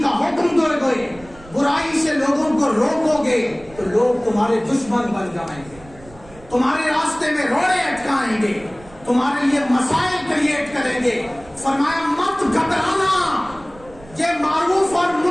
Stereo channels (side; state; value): right; noise; rumble, 22 dB below the sound